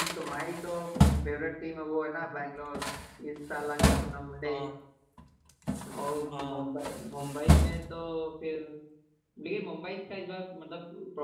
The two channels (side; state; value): both; identical; correlation 1.00